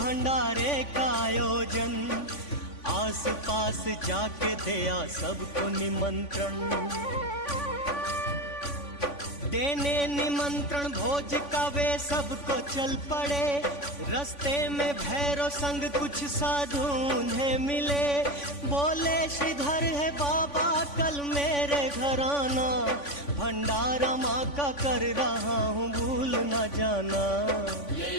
का आयोजन, आस पास जाके दिया सबको निमंत्रण। देने निमंत्रण भोज का वे सबको चल पड़े, रास्ते में भैरव संग कुछ साधु उन्हें मिले। बोले श्रीधर है बाबा कल मेरे घर आना, भंडारा माँ का कर रहा हूँ भूल न जाना। ले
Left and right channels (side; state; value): right; late; 3.5 ms